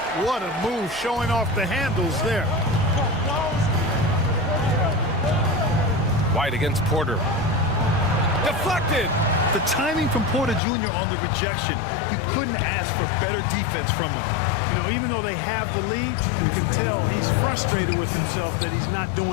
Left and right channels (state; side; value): drops out; right; at 10.6 s